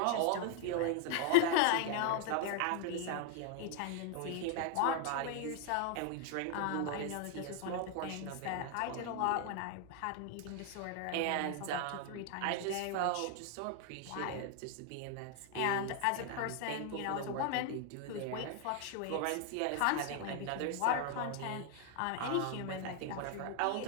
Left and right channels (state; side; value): different; both; correlation 0.00